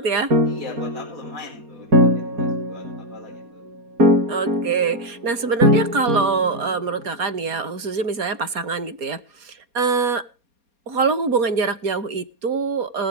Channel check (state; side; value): late; left; 4.2 ms